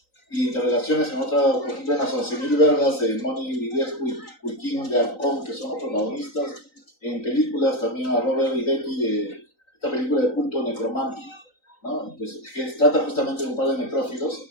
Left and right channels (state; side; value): late; right; 3.9 ms